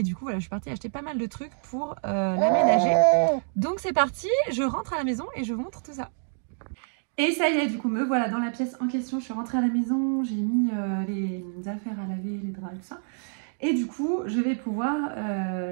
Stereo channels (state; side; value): silent; left; digital silence